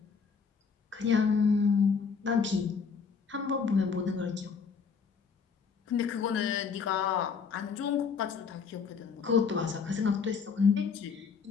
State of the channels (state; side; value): quieter; right; 5.8 dB